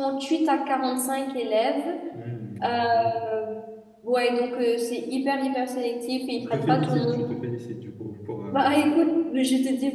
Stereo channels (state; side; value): identical; both; correlation 1.00